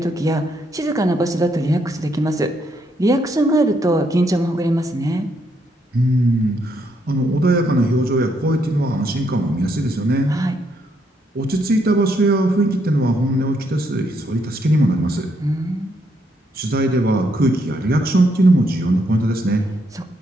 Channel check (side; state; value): both; normal; correlation 0.75